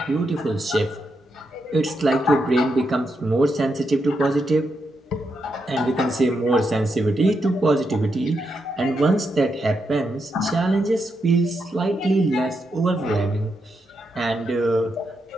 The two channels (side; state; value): both; normal; correlation 0.83